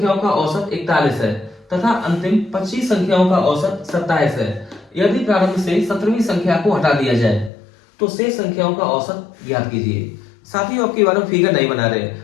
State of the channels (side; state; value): right; drops out; at 7.5 s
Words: का औसत 41 है तथा अंतिम 25 संख्याओं का औसत 27 है। यदि प्रारंभ से 17वीं संख्या को हटा दिया जाए तो शेष संख्याओं का औसत ज्ञात कीजिए। साथियों आपकी बार में फिगर नहीं बना रहे,